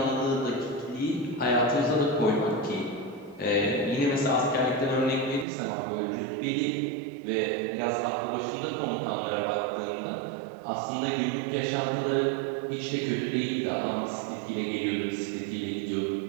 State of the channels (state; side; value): drops out; left; at 5.5 s